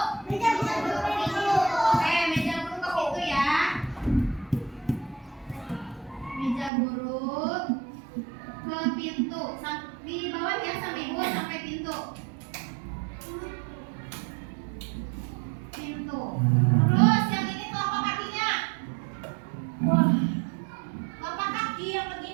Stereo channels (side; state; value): left; drops out; at 6.7 s